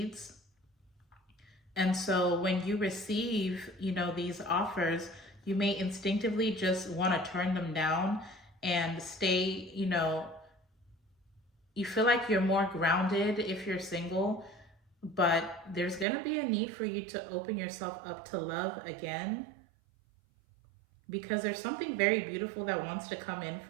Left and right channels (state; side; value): drops out; left; at 16.1 s